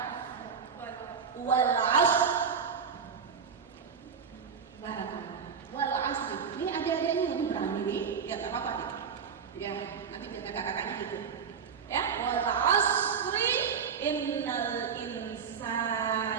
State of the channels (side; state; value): left; quieter; 6.6 dB